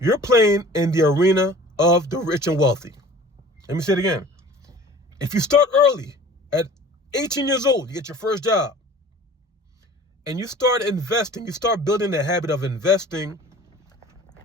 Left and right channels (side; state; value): both; normal; correlation 0.45